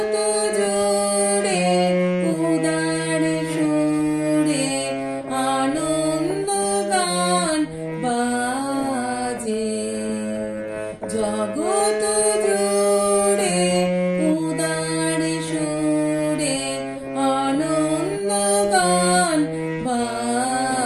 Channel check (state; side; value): identical; both; correlation 1.00